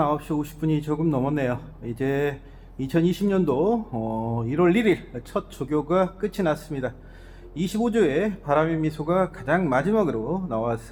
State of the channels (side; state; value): both; identical; correlation 1.00